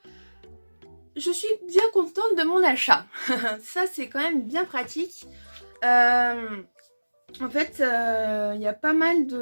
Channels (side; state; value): both; inverted; correlation -1.00